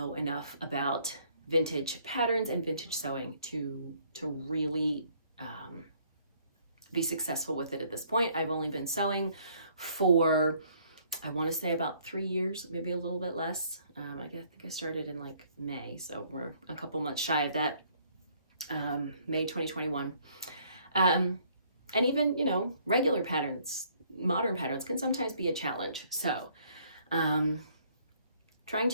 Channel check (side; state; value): both; inverted; correlation -0.63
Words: enough about vintage patterns and vintage sewing to really be successful with it at this point. I've only been sewing for, I want to say, about 3 years, maybe a little bit less. I think I started in like May, so we're a couple months shy of that. May 2021. And even, regular patterns, modern patterns can sometimes be a challenge. So trying